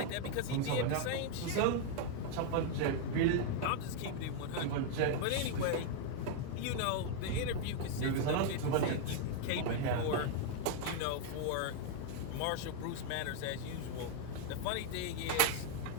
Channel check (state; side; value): different; both; correlation 0.00